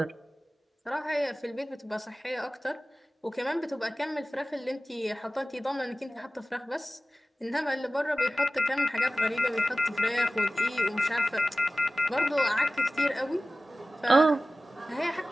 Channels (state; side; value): normal; both; correlation 0.96